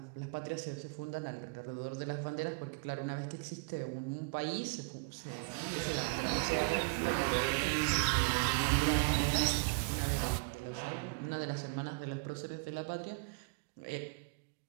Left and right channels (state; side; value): quieter; left; 31.7 dB